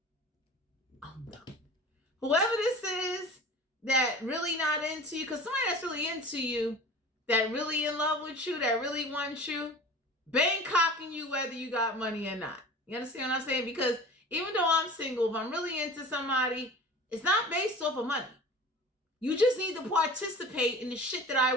I'm done. Whoever this is that really not into you, because somebody that's really into you, that really in love with you, that really wants you, Bangkocking you whether you got money or not. You understand what I'm saying? Because even though I'm single, if I'm really into somebody, it's not based off of money. You just need to participate in the shit that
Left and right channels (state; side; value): normal; both; correlation 0.39